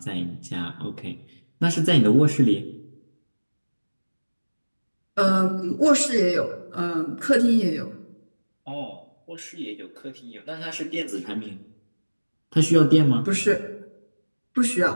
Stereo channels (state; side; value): inverted; both; correlation -1.00